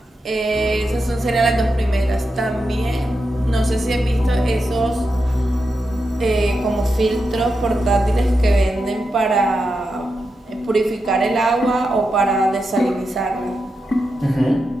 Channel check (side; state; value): both; normal; correlation 0.87